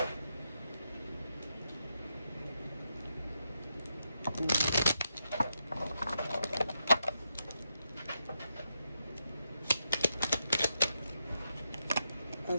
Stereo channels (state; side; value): inverted; both; correlation -0.84